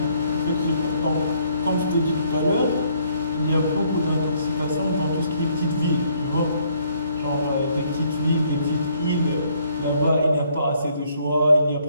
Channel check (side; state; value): both; inverted; correlation -0.67